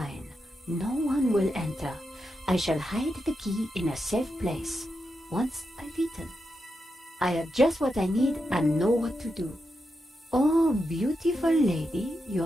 No one will enter. I shall hide the key in a safe place. Once I've eaten. I have just what I need and know what to do. Oh, beautiful lady,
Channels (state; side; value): normal; both; correlation 0.86